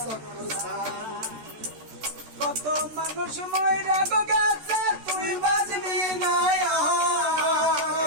চক্কর ছাড়। কত মানুষ মইরা গেছে তুই বাজবি না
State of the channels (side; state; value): left; late; 13 ms